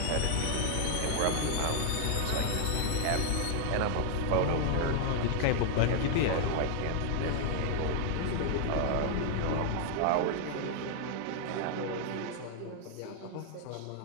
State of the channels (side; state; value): both; different; correlation 0.00